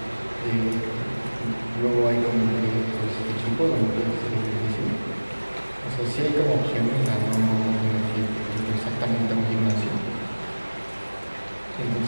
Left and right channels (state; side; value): inverted; both; correlation -1.00